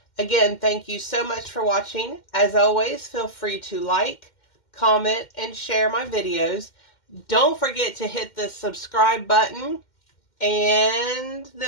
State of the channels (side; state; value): right; late; 2.1 ms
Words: Again, thank you so much for watching. As always, feel free to like, comment, and share my videos. Don't forget to hit the subscribe button and the